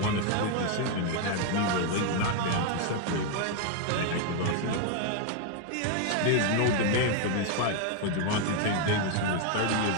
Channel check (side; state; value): both; different; correlation 0.00